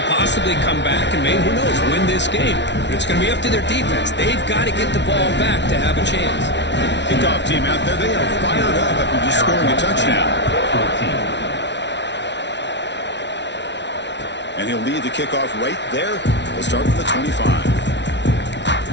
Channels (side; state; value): right; late; 0.51 ms